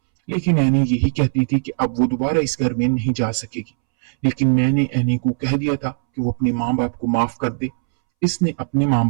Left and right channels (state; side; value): silent; left; 66 dB below the other